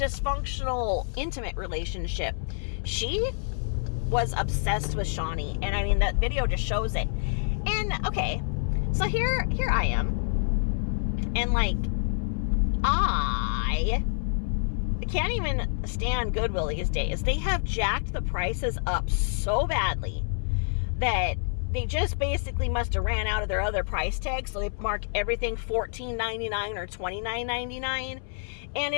intimate relationship. She was obsessed with Shani, and I mean, that video just shows it. And okay, so here I am, and like, I can't even stand Goodwill these days. They have jacked the prices up so badly that they just basically must have ran out of their other price tags, so they mark everything $14.99 or $29.99, and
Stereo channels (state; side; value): silent; right; 60 dB below the other